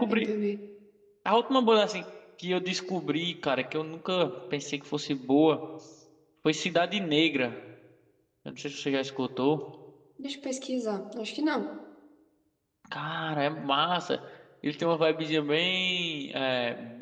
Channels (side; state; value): both; identical; correlation 1.00